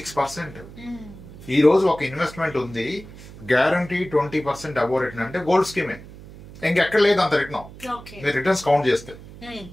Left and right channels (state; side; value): noise; right; hum, 17 dB below the sound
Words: ఈ రోజు ఒక ఇన్వెస్ట్మెంట్ ఉంది, గ్యారంటీ 20% అబోవ్ రిటర్న్ అంటే గోల్డ్ స్కీమే, ఇంకెక్కడ లేదు అంత రిటర్న్. మీరు రిటర్న్స్ కౌంట్ చేస్తే